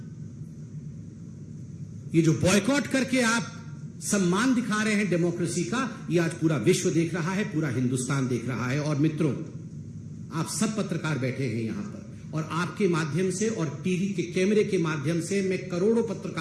ये जो बॉयकॉट करके आप सम्मान दिखा रहे हैं डेमोक्रेसी का, ये आज पूरा विश्व देख रहा है, पूरा हिंदुस्तान देख रहा है। और मित्रों, आप सब पत्रकार बैठे हैं यहां पर, और आपके माध्यम से और टीवी के कैमरे के माध्यम से मैं करोड़ों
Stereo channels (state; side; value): identical; both; correlation 1.00